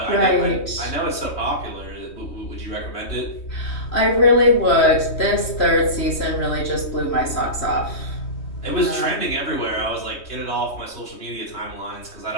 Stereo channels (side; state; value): right; late; 3.2 ms